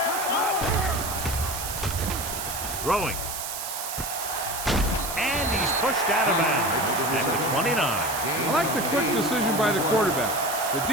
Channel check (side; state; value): right; noise; hiss, 6 dB below the sound